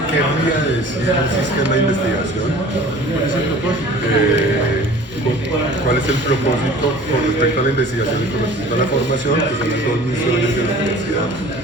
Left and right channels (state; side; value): normal; both; correlation 0.45